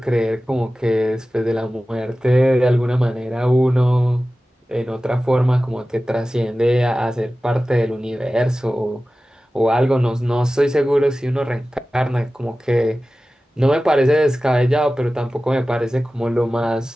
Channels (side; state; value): both; normal; correlation 0.96